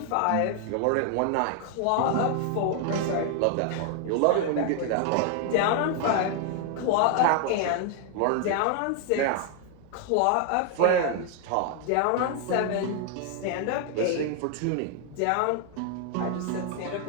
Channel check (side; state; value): both; different; correlation 0.00